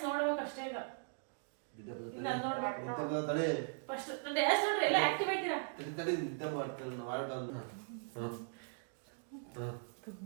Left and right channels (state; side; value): silent; left; digital silence